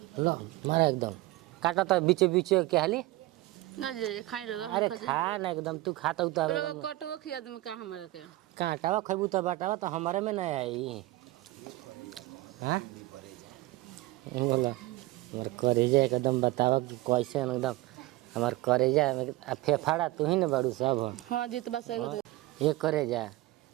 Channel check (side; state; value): left; quieter; 18.6 dB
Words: लो मारा एकदम काटा तो बीचे बीचे क्या हाली ना जे खाई रहा अरे खा ना एकदम तू खाता तो लोग कटवा खिया दे में का हमरा के काटावा खैबू तो बाटावा तो हमारे में नहीं आई हाँ बोला हमारे करेजा एकदम बतावा कैसे एकदम हमारे करेजा फेफाड़ा तू ही ना बड़ू सब हाँ जी तो बस ये करेजा